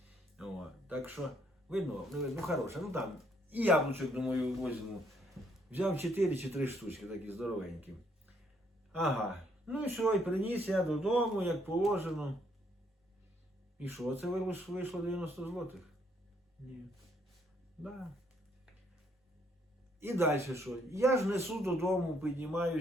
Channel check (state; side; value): normal; both; correlation 0.69